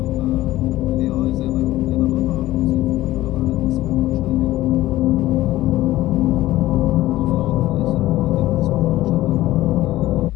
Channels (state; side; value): quieter; right; 16.1 dB